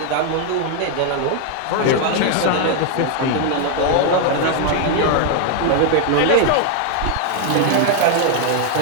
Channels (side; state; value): both; different; correlation 0.00